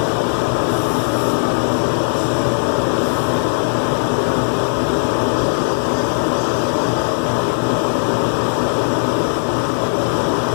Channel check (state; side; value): silent; right; digital silence